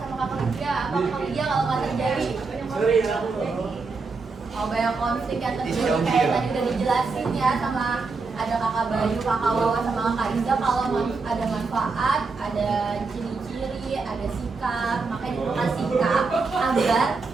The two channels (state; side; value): quieter; left; 4.3 dB